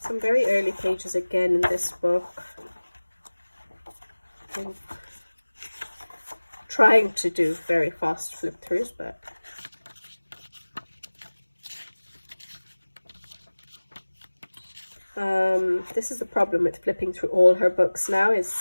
Some very early pages again in this book. I'm trying to do very fast flip throughs, but this is the problem with flipping through all her books now, is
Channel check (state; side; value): inverted; both; correlation -1.00